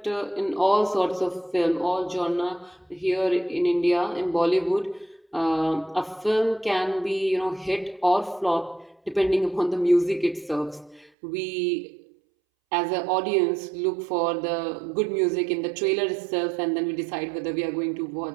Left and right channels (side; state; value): left; drops out; at 11.1 s